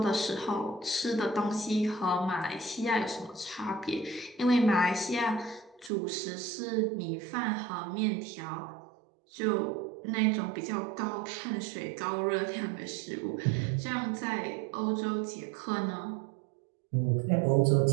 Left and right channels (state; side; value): drops out; left; at 5.9 s